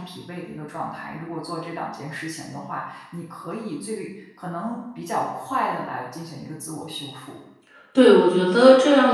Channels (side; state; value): both; identical; correlation 1.00